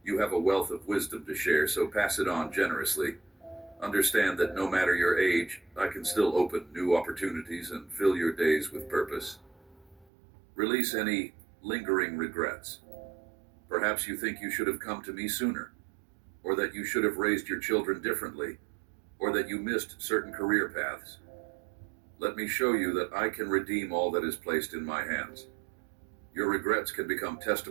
You have a wealth of wisdom to share, so pass it on generously. Understand that no matter your age, I can still open new opportunities and fill your days with purpose. Release any lingering regrets. Perhaps you think you should have come to me sooner, or that you should have raised your children differently, or that you missed certain career paths. Let me show you that I can redeem all that is placed in my hands. Your regrets can become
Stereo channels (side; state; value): left; drops out; at 10.1 s